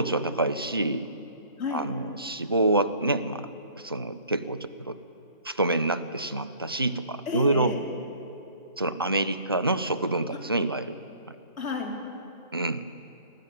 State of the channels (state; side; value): inverted; both; correlation -0.52